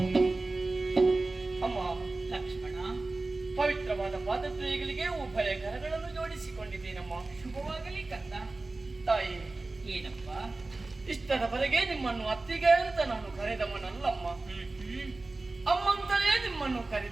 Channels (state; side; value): quieter; left; 3.2 dB